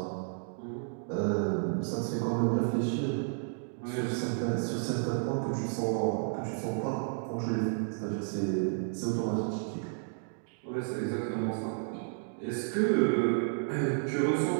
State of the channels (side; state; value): left; silent; digital silence